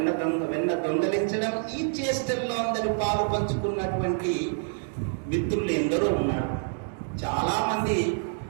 దొంగలించడం, ఈ చేష్టల్లో అందరూ పాలు పంచుకున్నటువంటి మిత్రులు ఎందరో ఉన్నారు. చాలా మంది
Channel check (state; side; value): silent; left; 60 dB below the other